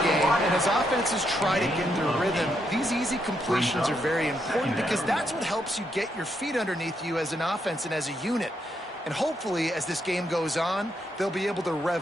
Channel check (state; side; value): normal; both; correlation 0.78